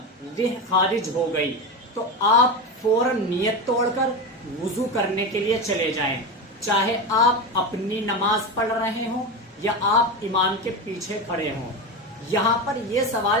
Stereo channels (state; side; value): normal; both; correlation 0.20